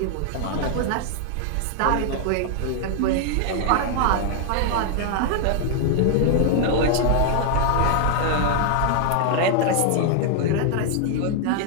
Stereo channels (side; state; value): both; different; correlation 0.00